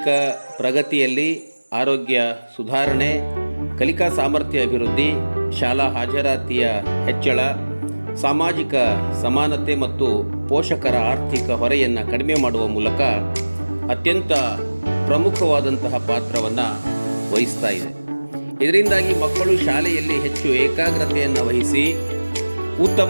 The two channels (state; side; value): inverted; both; correlation -1.00